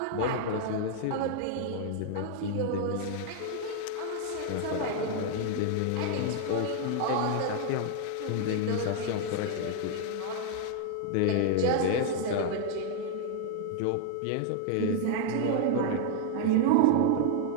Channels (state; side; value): different; both; correlation 0.00